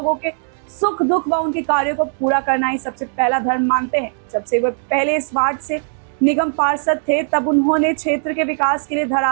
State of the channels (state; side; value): silent; left; digital silence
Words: के सुख दुख व उनके कार्यों को पूरा करना ही सबसे पहला धर्म मानते हैं। जब से वे पहले इस वार्ड से निगम पार्षद थे तब उन्होंने क्षेत्र के विकास के लिए